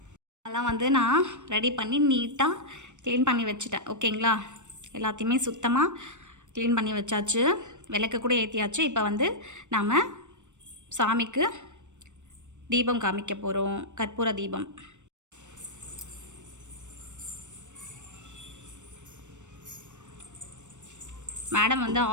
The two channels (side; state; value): left; late; 0.84 ms